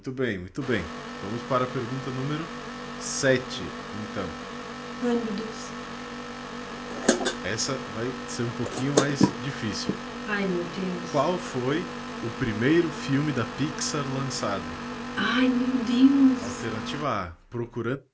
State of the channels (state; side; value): identical; both; correlation 1.00